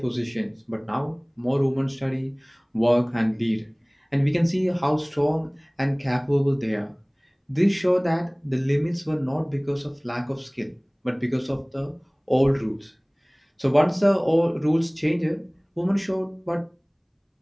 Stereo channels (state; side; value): identical; both; correlation 1.00